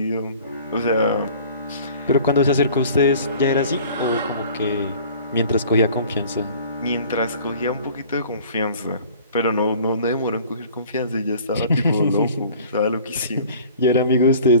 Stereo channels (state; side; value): inverted; both; correlation -0.48